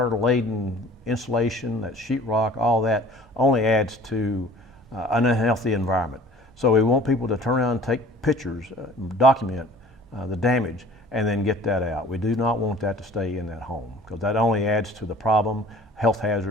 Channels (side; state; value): both; normal; correlation 0.48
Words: insulation, that sheetrock, all that only adds to an unhealthy environment. So we want people to turn around and take pictures, document the damage, and then get that out. We do not want that to stay in that home because that only adds to the problem, health